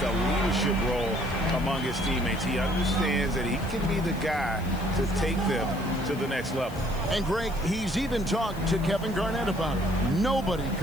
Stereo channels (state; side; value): noise; left; hiss, 20 dB below the sound